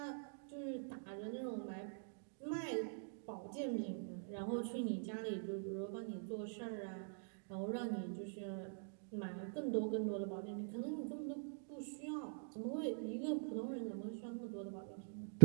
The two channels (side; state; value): left; silent; digital silence